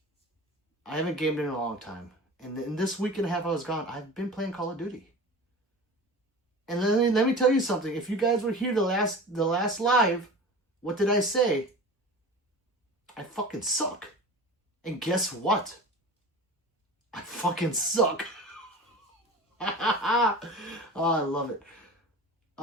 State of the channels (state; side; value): normal; both; correlation 0.35